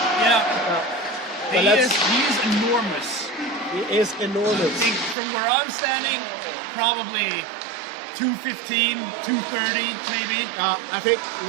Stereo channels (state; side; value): drops out; left; at 5.2 s